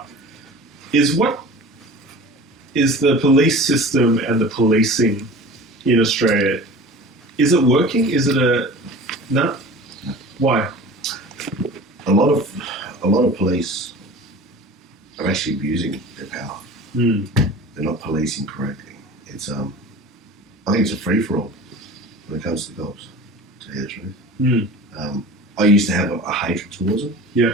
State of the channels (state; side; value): normal; both; correlation 0.38